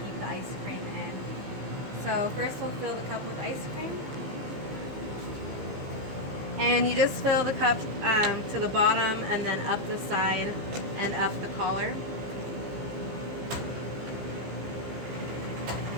keep the ice cream in. So first we'll fill the cup with ice cream. And you just fill the cup to the bottom and then up the side and up the collar.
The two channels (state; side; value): late; left; 15 ms